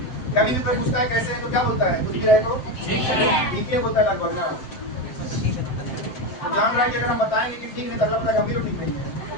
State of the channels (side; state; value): right; late; 7.7 ms